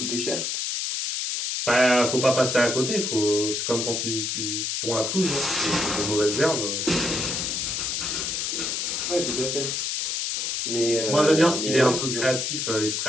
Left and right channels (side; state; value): left; noise; hiss, 1 dB below the sound